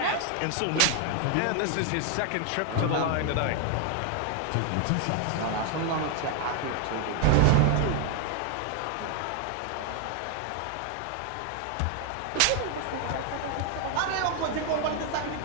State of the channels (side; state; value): both; different; correlation 0.00